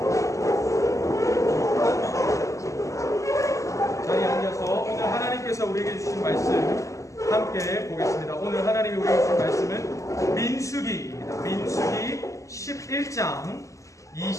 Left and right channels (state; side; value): late; right; 0.16 ms